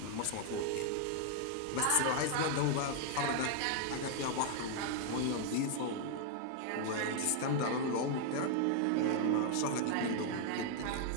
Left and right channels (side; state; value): both; different; correlation 0.00